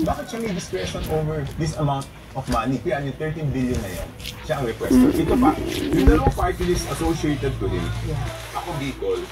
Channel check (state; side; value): identical; both; correlation 1.00